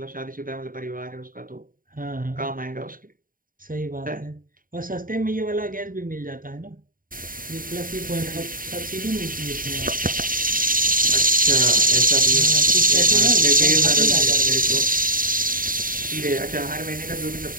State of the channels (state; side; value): late; left; 0.41 ms